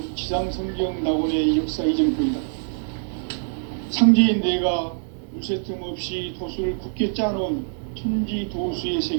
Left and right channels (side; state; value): left; silent; digital silence